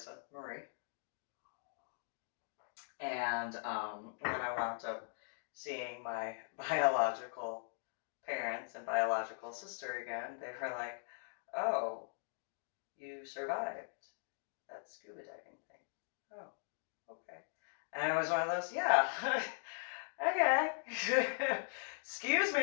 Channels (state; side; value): silent; right; digital silence